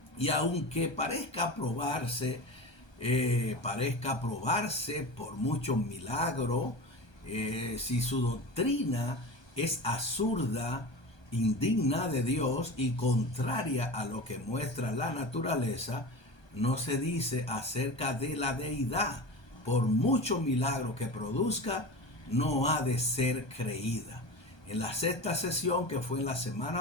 Y aunque parezca probarse por muchos milagros, si su doctrina es absurda, indigna de Dios y contraria a lo que muestra la naturaleza, no se dice acerca de la deidad. Por mucho milagro que produzca, no ha de ser creída. En la sexta sesión, que fue en la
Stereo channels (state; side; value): late; right; 1.2 ms